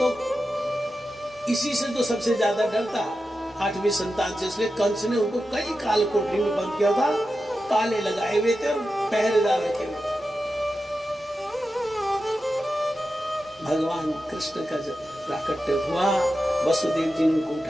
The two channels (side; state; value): both; normal; correlation 0.91